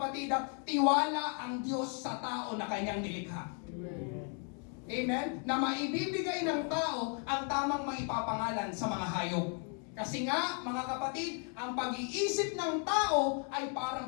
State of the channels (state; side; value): quieter; right; 39.8 dB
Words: tiwala ang Diyos sa tao na kanyang nilikha. Amen? Na maibibigay ng tao ang tamang maipapangalan sa mga hayop. Kasi nga, mga kapatid, ang pag-iisip ng tao ay parang